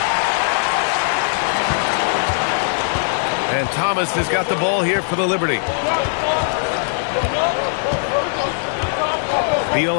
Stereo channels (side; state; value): right; silent; digital silence